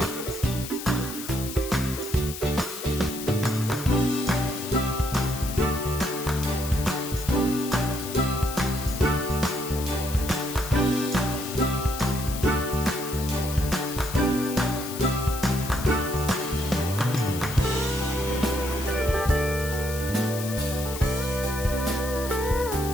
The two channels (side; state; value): left; noise; hiss, 9 dB below the sound